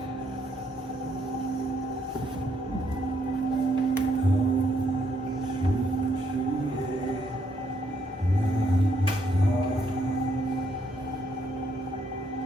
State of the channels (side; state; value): both; normal; correlation 0.73